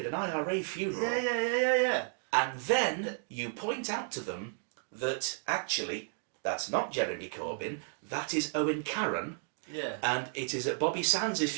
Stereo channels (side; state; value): left; silent; 56 dB below the other